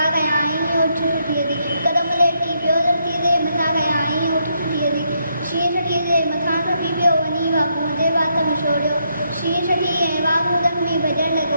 कयाईं उठ छुटीअ ते हिकदम लेटी पियो धरती ते मथां कयाईं उठ छुटीअ ते शींहं छटीअ जे मथां खपी पियो वञी वाघूअ जे वात में छोड़ियो शींहं छटी ऐं वाघू ज़ख़्मी भॼण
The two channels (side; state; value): both; inverted; correlation -0.77